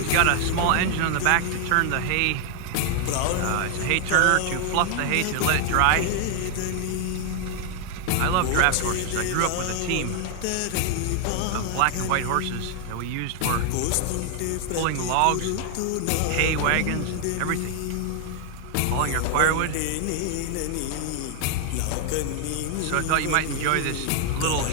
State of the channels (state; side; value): different; both; correlation 0.00